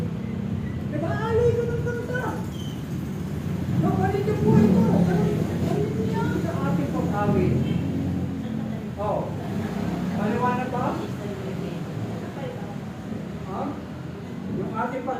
Diba alay ko ng kanta? Napalit yung buhay ko. Palit niya sa ating pag-awit. Maliwanag ba? Ha? Yung ating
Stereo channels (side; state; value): both; identical; correlation 1.00